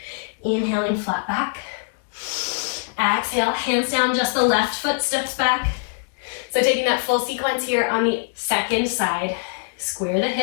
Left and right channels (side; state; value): right; silent; digital silence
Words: Inhaling, flat back. Exhale, hands down, just the left foot steps back. So taking that full sequence here on the second side. Square the